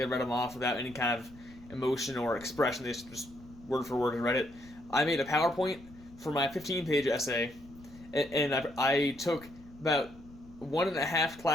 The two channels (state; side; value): noise; left; rumble, 21 dB below the sound